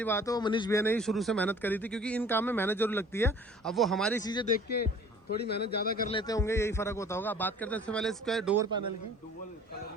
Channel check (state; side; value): normal; both; correlation 0.49